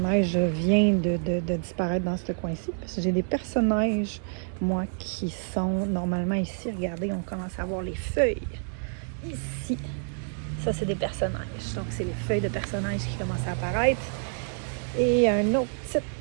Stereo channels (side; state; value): left; silent; 60 dB below the other